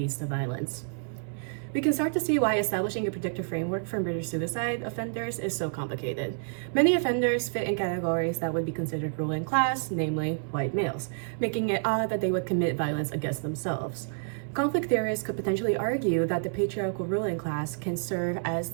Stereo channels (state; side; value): silent; left; 59 dB below the other